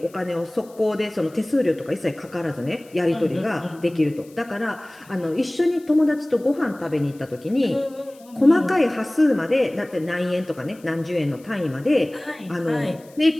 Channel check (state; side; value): noise; left; hiss, 27 dB below the sound